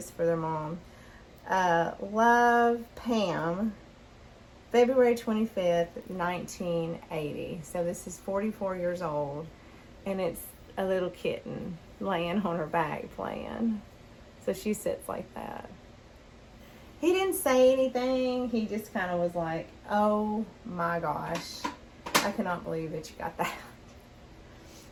for their mom. Love, Pam. February 25th, 1980. So this is 44 years old. And it's a little kitten laying on her back playing. So she sits like that. He didn't say anything. He just kind of was like, oh my gosh, I cannot believe that you got that.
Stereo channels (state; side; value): identical; both; correlation 1.00